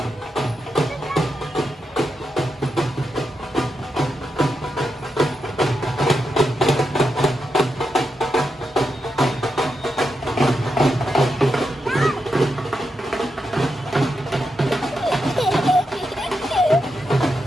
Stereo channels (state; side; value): normal; both; correlation 0.86